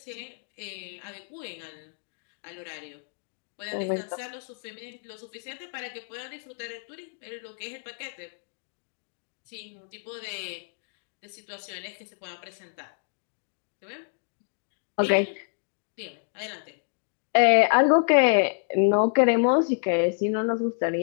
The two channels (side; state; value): right; silent; digital silence